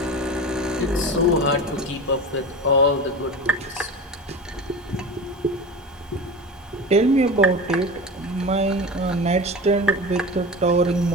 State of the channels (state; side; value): normal; both; correlation 0.30